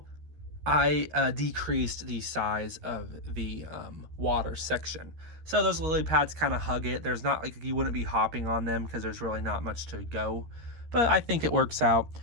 I decreased the size of the water section. So those lily pads kind of hug it. There's not, like, you wouldn't be hopping on them because there's really not much to go. But I think it works out.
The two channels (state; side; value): late; left; 13 ms